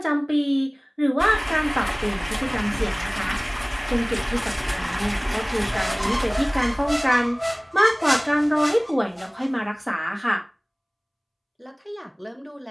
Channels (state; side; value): identical; both; correlation 1.00